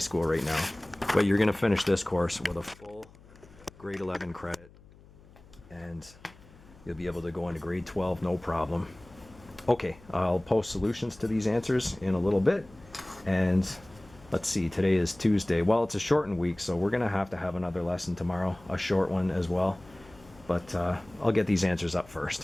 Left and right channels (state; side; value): noise; left; hum, 24 dB below the sound